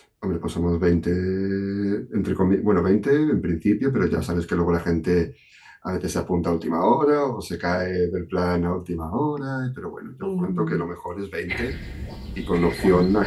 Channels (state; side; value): identical; both; correlation 1.00